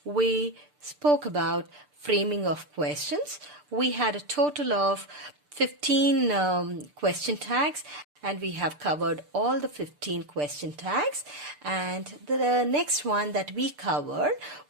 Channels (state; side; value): late; left; 6.8 ms